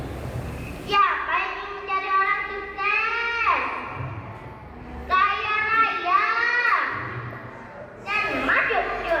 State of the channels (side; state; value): both; identical; correlation 1.00